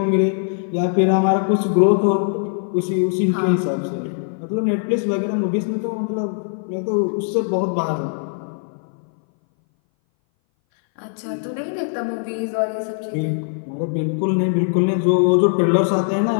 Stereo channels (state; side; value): silent; right; 60 dB below the other